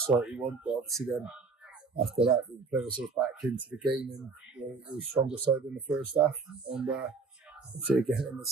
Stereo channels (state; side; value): quieter; left; 4.5 dB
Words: you want, but obviously then after that we played ourselves back into the game and we were stronger side in the first half. And obviously again in the